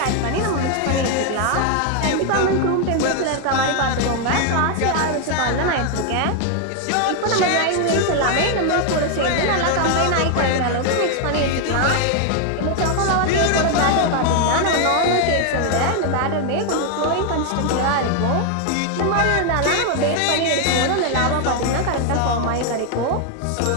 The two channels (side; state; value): both; different; correlation 0.00